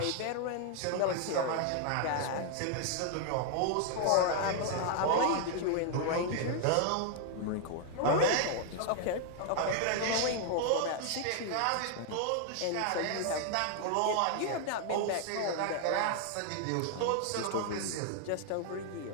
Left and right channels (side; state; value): both; different; correlation 0.00